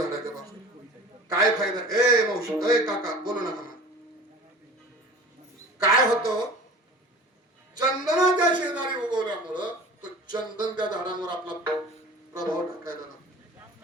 पासून. काय फायदा? ए मावशी, ए काका, बोलू नका मला. काय होतं? चंदनाच्या शेजारी उगवल्यामुळं तो चंदन त्या झाडांवर आपला प्रभाव टाकायला लागतो.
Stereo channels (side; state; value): both; normal; correlation 0.40